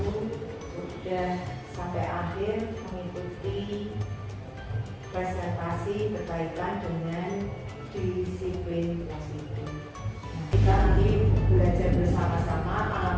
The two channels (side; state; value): both; identical; correlation 1.00